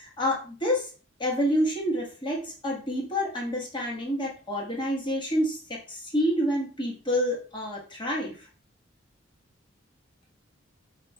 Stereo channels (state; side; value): normal; both; correlation 0.49